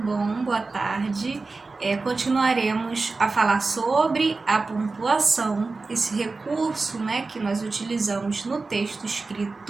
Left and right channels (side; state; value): left; quieter; 3.8 dB